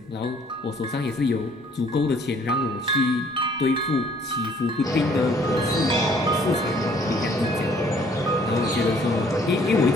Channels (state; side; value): normal; both; correlation 0.60